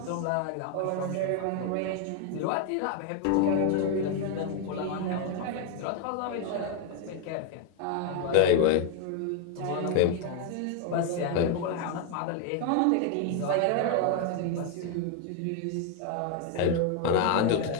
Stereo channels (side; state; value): both; different; correlation 0.01